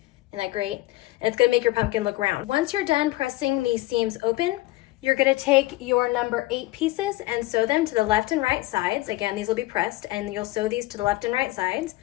Isn't that great? And it's gonna make your pumpkin look round. Once you're done pressing these seams open, you're gonna take your number 8 pieces and sew them to the left and right sides. Again, these will be pressed and you'll sew these to the left and right sides.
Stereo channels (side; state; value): right; quieter; 18.5 dB